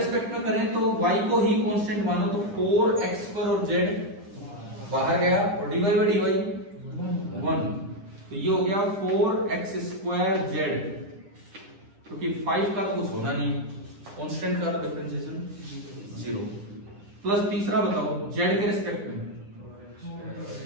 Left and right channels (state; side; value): late; left; 9.9 ms